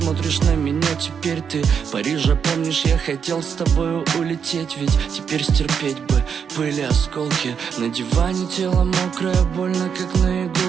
на меня, теперь ты Парижа, помнишь, я хотел с тобою улететь, ведь теперь стерпеть бы были осколки. На диване тело мокрое, больно, как на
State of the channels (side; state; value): left; quieter; 7.0 dB